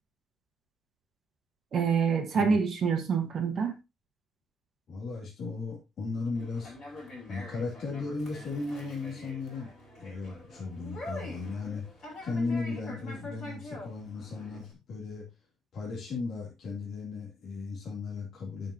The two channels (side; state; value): both; normal; correlation 0.72